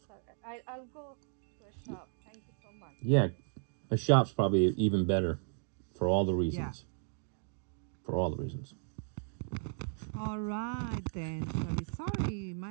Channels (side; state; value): left; silent; digital silence